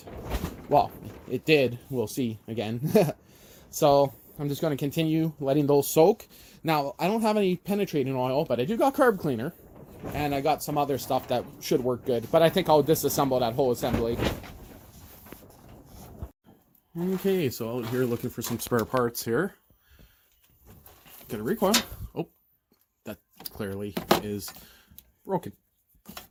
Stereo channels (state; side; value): identical; both; correlation 1.00